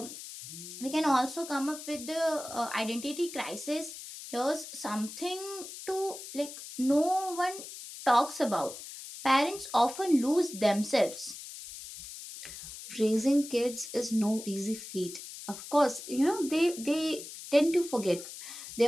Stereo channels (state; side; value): noise; left; hiss, 12 dB below the sound